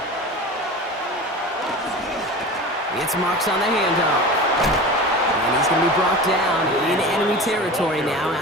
It's Marks on the handoff. And he's going to be brought down in enemy territory now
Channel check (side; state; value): both; normal; correlation 0.33